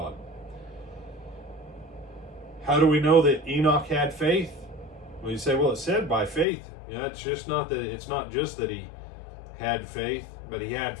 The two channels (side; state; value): right; drops out; at 6.5 s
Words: How do we know that Enoch had faith? Well, you say, well, it said by faith. Yeah, it's not just that he had faith, but he had